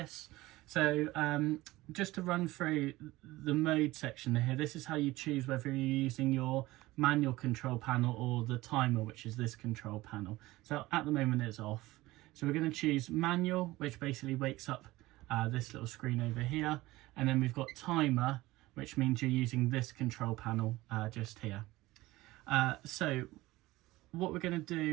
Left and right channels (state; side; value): quieter; left; 18.6 dB